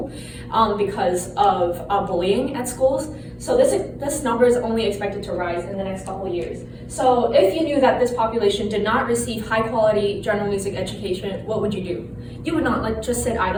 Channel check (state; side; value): identical; both; correlation 1.00